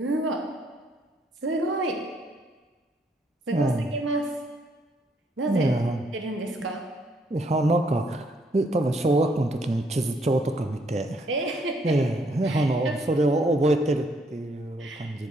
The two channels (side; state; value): both; normal; correlation 0.70